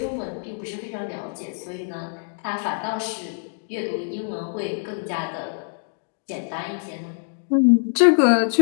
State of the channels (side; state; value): right; silent; digital silence